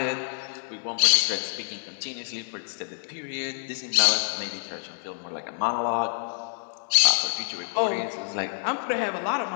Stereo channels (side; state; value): right; silent; digital silence